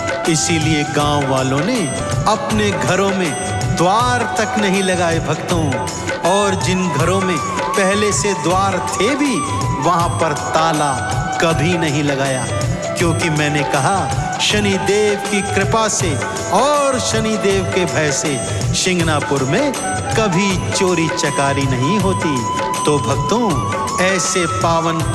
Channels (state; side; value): identical; both; correlation 1.00